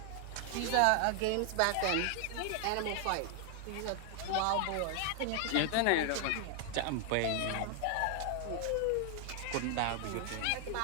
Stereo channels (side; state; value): both; different; correlation 0.00